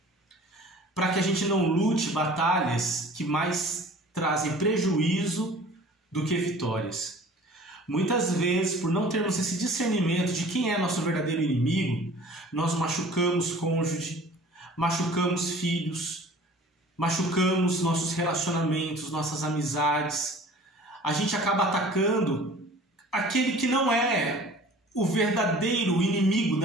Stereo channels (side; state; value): both; normal; correlation 0.46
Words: para que a gente não lute batalhas que mais trazem prejuízo do que vitórias. Muitas vezes, por não termos esse discernimento de quem é nosso verdadeiro inimigo, nós machucamos cônjuge, machucamos filhos, machucamos nossos relacionamentos, nossas amizades. A gente acaba atacando aquele que não é o verdadeiro inimigo